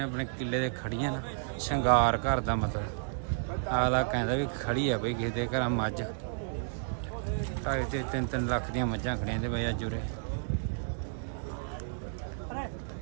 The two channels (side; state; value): left; silent; digital silence